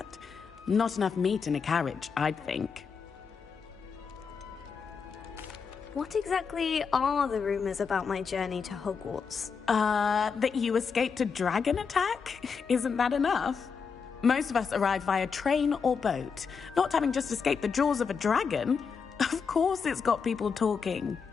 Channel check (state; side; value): quieter; right; 5.8 dB